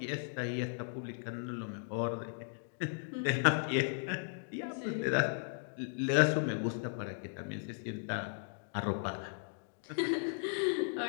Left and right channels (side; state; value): right; silent; digital silence